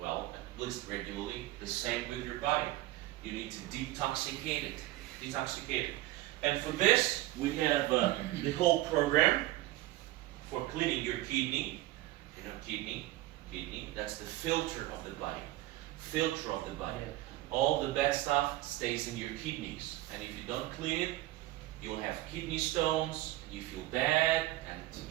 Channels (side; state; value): left; quieter; 17.1 dB